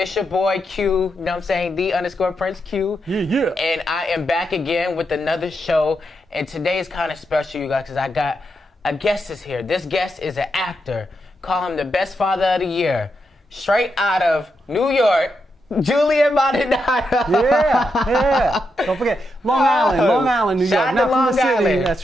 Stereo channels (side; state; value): both; normal; correlation 0.84